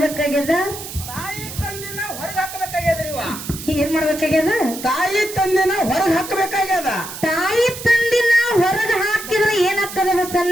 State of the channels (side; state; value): right; noise; hiss, 10 dB below the sound